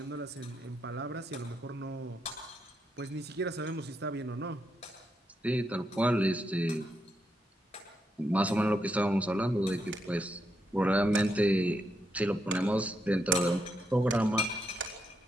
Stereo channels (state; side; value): normal; both; correlation 0.81